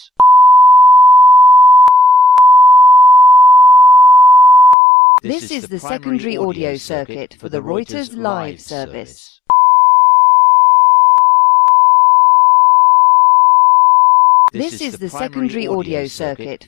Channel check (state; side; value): drops out; right; at 4.8 s